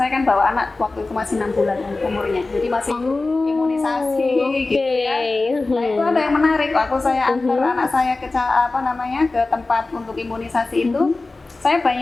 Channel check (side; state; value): right; quieter; 3.4 dB